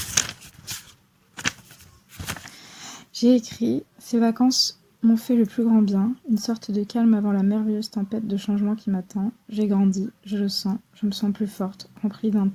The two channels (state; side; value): identical; both; correlation 1.00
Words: J'ai écrit « Ces vacances m'ont fait le plus grand bien, une sorte de calme avant la merveilleuse tempête de changement qui m'attend. J'ai grandi, je le sens, je me sens plus forte, remplie d'un